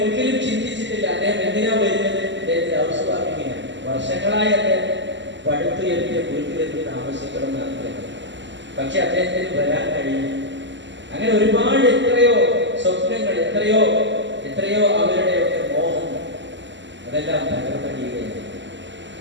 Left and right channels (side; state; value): left; late; 0.53 ms